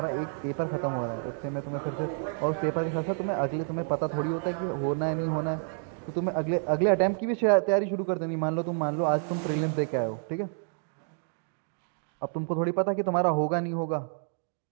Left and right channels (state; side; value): silent; left; 58 dB below the other